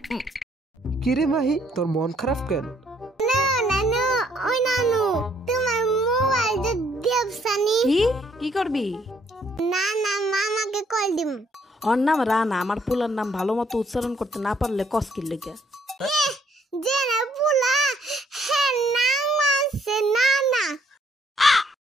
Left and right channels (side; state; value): both; normal; correlation 0.67